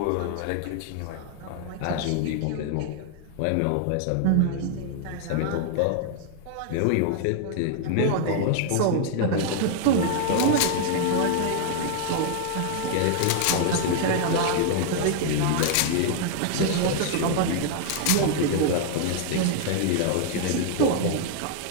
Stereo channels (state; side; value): different; both; correlation 0.00